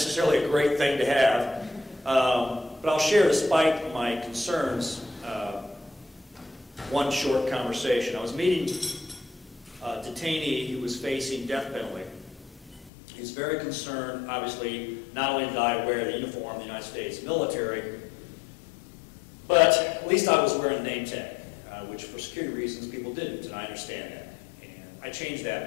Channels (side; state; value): right; drops out; at 12.9 s